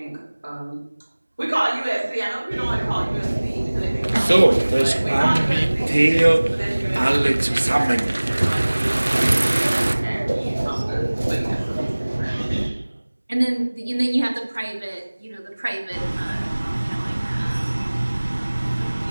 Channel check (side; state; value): both; inverted; correlation -1.00